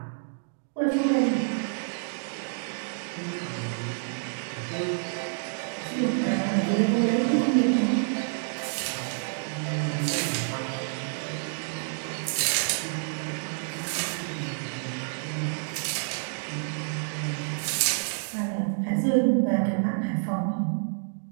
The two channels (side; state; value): left; silent; digital silence